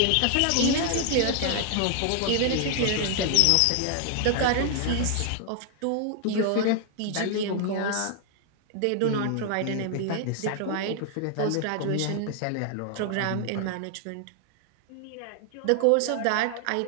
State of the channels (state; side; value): different; both; correlation 0.00